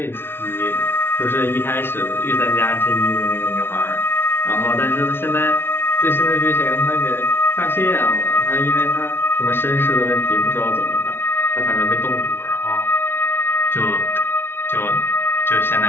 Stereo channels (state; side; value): late; right; 0.11 ms